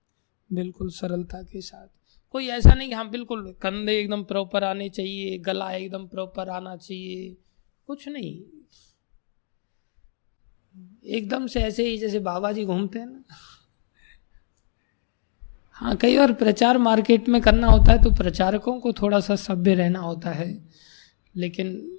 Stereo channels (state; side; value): silent; right; digital silence